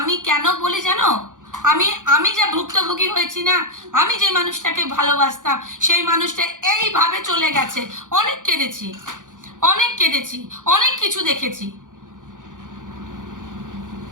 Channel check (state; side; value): late; left; 0.88 ms